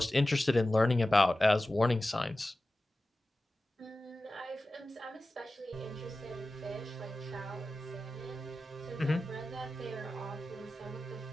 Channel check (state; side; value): normal; both; correlation 0.95